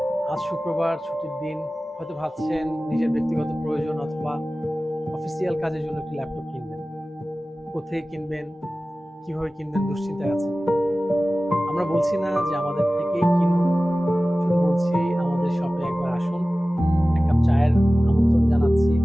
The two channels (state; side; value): normal; both; correlation 0.96